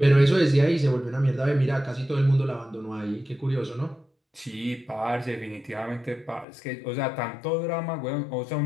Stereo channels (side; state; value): right; drops out; at 6.5 s